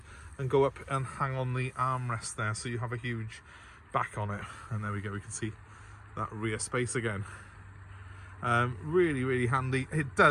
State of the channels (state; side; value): identical; both; correlation 1.00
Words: and go up and hang on the armrest there, so you have a huge back on it. And there we go, we can see that rear space again. Really, really handy. It